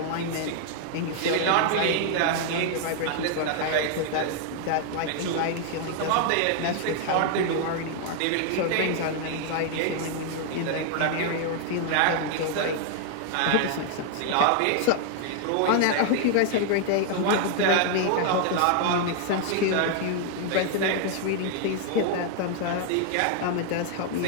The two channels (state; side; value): different; both; correlation 0.00